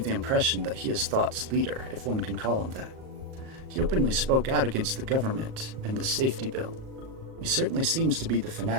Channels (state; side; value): late; left; 38 ms